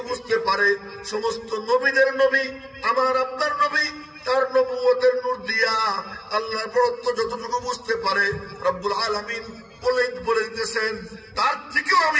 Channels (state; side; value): identical; both; correlation 1.00